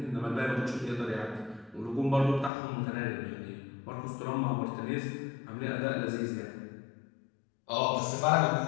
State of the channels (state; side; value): drops out; right; at 2.5 s